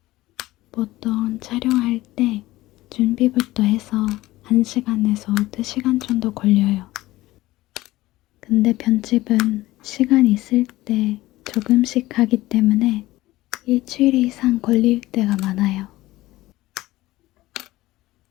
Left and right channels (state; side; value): quieter; right; 17.6 dB